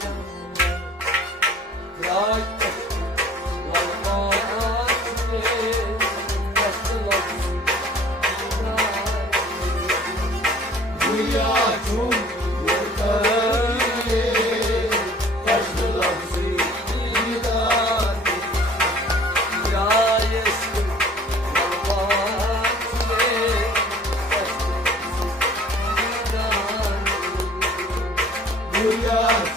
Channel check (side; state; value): both; normal; correlation 0.51